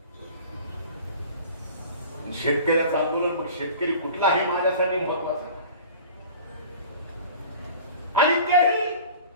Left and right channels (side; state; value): both; inverted; correlation -0.41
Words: शेतकऱ्याचं आंदोलन मग शेतकरी कुठला हे माझ्यासाठी महत्वाचं आहे. आणि तेही